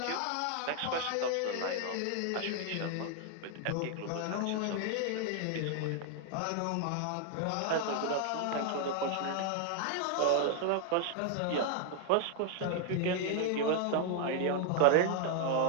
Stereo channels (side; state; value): both; different; correlation 0.00